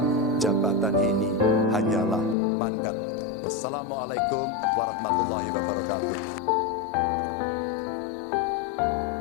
jabatan ini hanyalah mandat. Wassalamualaikum warahmatullahi wabarakatuh.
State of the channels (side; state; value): right; drops out; at 2.4 s